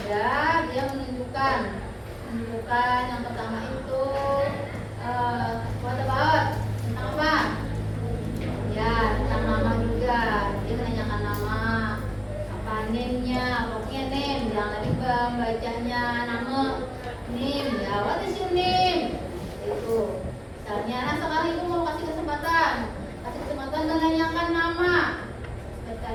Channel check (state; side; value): identical; both; correlation 1.00